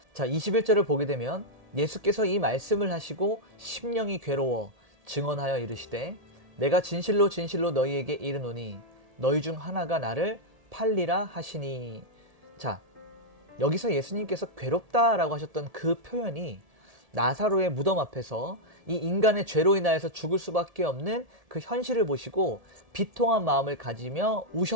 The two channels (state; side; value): late; left; 1.7 ms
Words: 자, 21절을 보게 되면 예수께서 이 말씀을 하시고 심령이 괴로워 증언하여 이르시되 내가 진실로 진실로 너희에게 이르노니 너희 중 하나가 나를 팔리라 하시니. 자, 여기서 예수님께서 괴롭다라고 하셨던 그 표현이 나사로의 무덤 앞에서 이 인간의 죄로 인하여서 죽을 수밖에 없는 그 현실을 보시고 비통한 마음을 가지며